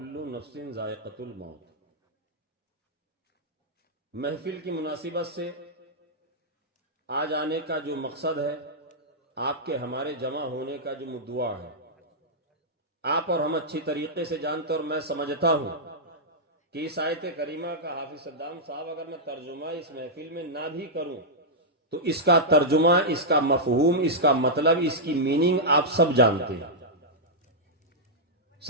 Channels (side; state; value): both; normal; correlation -0.09